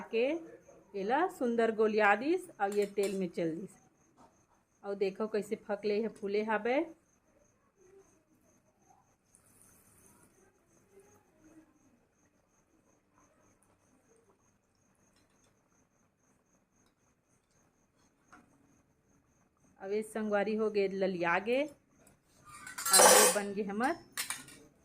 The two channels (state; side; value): identical; both; correlation 1.00